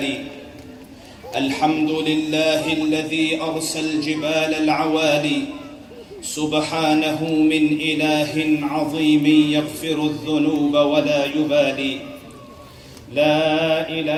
الحمد لله الذي أرسى الجبال العوالي، سبحانه من إله عظيم يغفر الذنوب ولا يبالي. لا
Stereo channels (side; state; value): both; identical; correlation 1.00